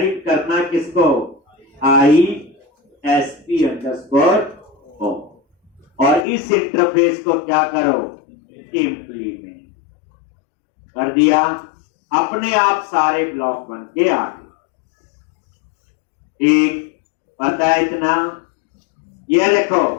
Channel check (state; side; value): drops out; right; at 6.2 s